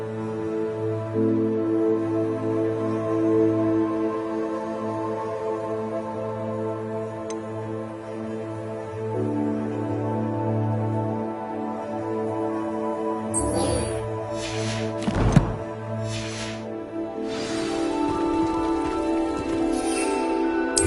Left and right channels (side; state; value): both; identical; correlation 1.00